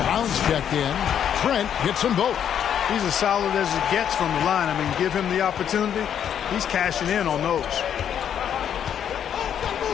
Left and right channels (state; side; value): quieter; right; 9.0 dB